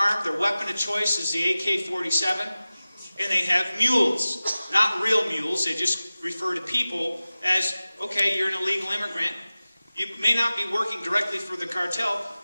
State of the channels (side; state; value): both; inverted; correlation -0.97